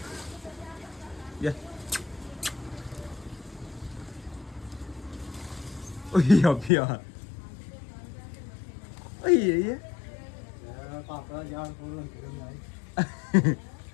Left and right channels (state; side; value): drops out; right; at 6.7 s